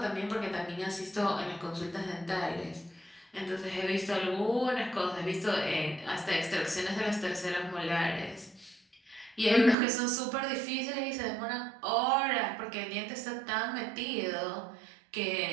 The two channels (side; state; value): left; drops out; at 9.8 s